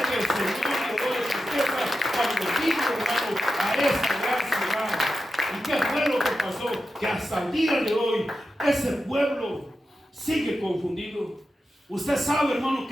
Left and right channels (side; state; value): both; normal; correlation 0.90